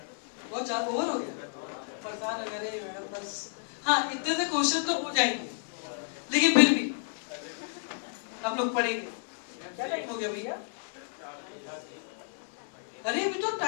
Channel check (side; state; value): right; silent; 57 dB below the other